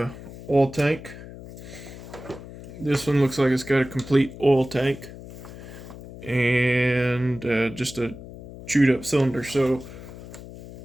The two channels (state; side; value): noise; left; hum, 14 dB below the sound